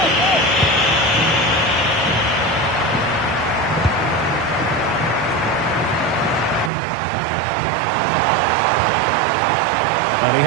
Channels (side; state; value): left; drops out; at 6.7 s